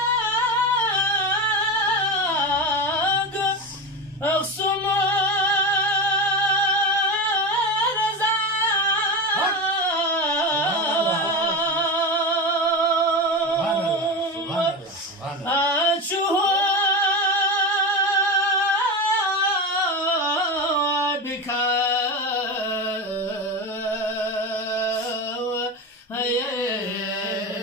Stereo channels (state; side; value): normal; both; correlation 0.21